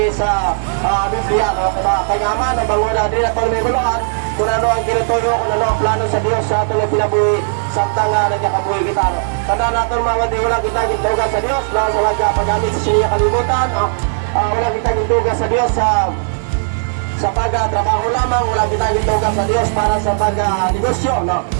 sa Biblia, no? Kaya man, bango na din atong may guluhan, kung ano ang kinutuyo, kung ano ang plano sa Diyos sa aton na pinabuhi, samtang nagkakabuhi kita. Tanda natin mga kapatid, wala kita gintugan sa Diyos, no? Sa paggamit sa siya kalibutan, no? Wala kita gintugan sa Diyos sa pag-trabaho lamang, wala kita gintugan sa Diyos para sa pag-negosyo, no?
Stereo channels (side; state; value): left; silent; 58 dB below the other